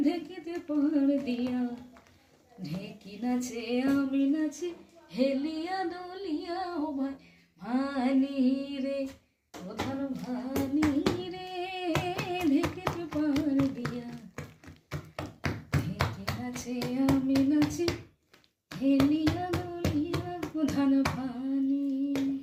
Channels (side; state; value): both; identical; correlation 1.00